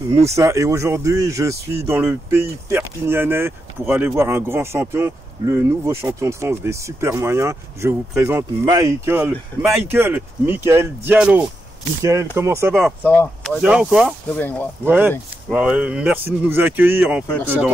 Moussa. Et aujourd'hui, je suis dans le pays perpignanais pour aller voir un grand champion, le nouveau champion de France des super moyens. Je vous présente Michael Diallo. Michael, comment ça va? Ça va. Bien ou quoi? Très bien, ouais. Merci de nous accueillir en fait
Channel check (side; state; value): both; normal; correlation 0.85